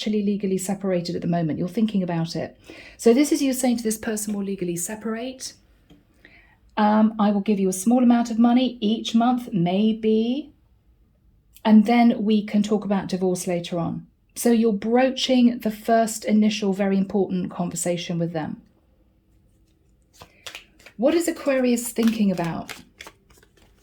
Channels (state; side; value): identical; both; correlation 1.00